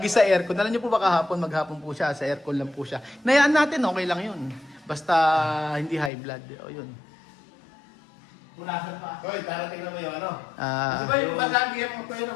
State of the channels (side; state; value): right; drops out; at 6.1 s